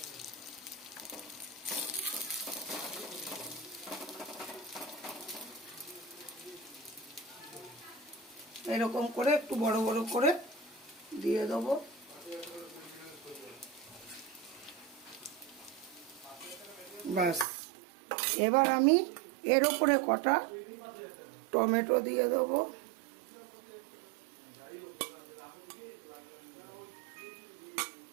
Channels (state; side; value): drops out; left; at 17.4 s